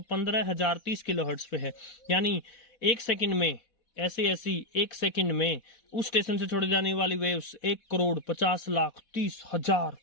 15,030 किलोहर्ट्ज पे है। यानी 1 सेकंड में ऐसे ऐसी 1 सेकंड में उस स्टेशन से छोड़ी जाने वाली वेव्स 1,50,30,30,000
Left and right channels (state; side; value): late; right; 4.1 ms